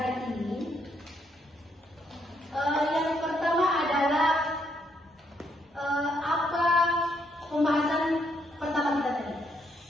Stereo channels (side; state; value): both; normal; correlation 0.74